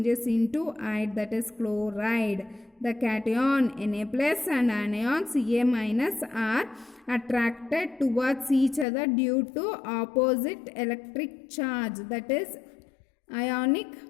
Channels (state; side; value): drops out; right; at 8.8 s